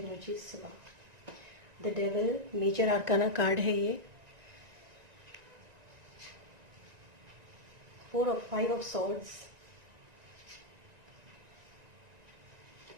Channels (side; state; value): left; late; 1.9 ms